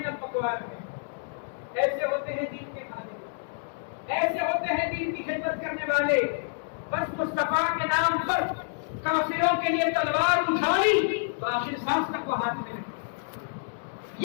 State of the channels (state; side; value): silent; right; digital silence